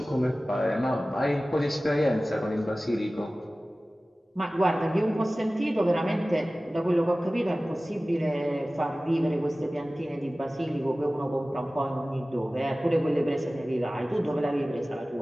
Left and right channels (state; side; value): normal; both; correlation 0.97